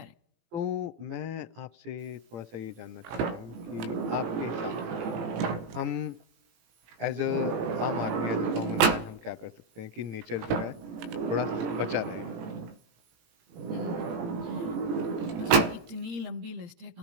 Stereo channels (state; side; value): late; left; 18 ms